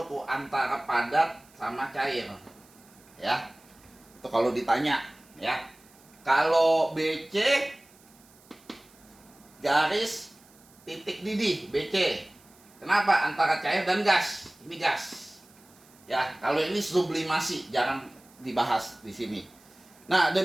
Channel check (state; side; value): noise; right; hiss, 27 dB below the sound